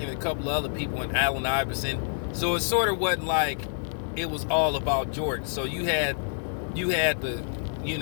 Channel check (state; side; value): silent; right; 55 dB below the other